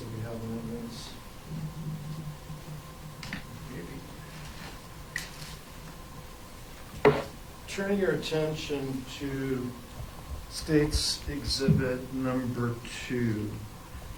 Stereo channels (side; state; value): both; identical; correlation 1.00